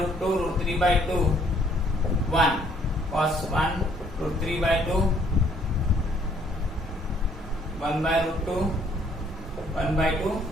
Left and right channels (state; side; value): normal; both; correlation 0.64